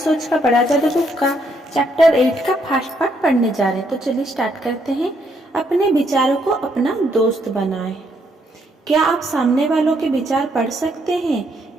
का बड़ा जादू बुक का चैप्टर 8 का फर्स्ट पार्ट पढ़ने जा रहे हैं। तो चलिए स्टार्ट करते हैं। अपने विचारों को अपना दोस्त बनाएं। क्या आप सामने वालों के विचार पढ़ सकते हैं?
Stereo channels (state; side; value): normal; both; correlation 0.73